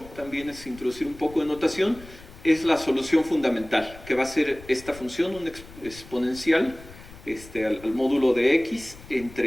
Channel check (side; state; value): left; noise; rumble, 19 dB below the sound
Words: también es introducir un poco de notación, es la solución fundamental, que va a ser esta función, un exponencial al módulo de x